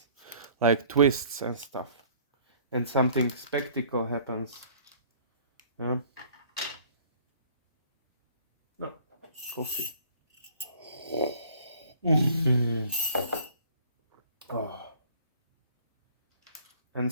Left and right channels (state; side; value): inverted; both; correlation -0.53